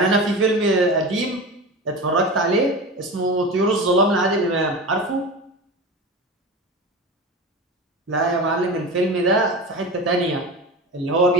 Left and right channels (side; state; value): both; normal; correlation 0.29